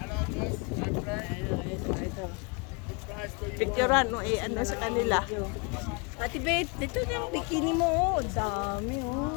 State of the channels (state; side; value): quieter; right; 31.1 dB